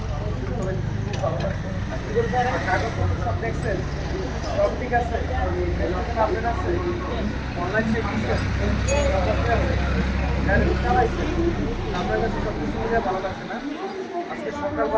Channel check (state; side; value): identical; both; correlation 1.00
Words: কাগজপত্র সব দেখছেন? সব ঠিক আছে? আপডেট আছে? অনলাইন চেক দিচ্ছেন? গাড়ি চালাইছেন? আপনার কাছে সব কিছু মিলে ভালো লাগছে না? আজকে